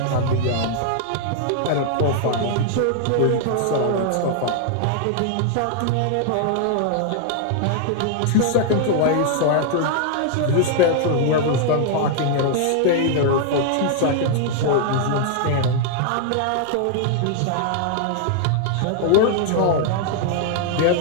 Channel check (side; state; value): both; different; correlation 0.00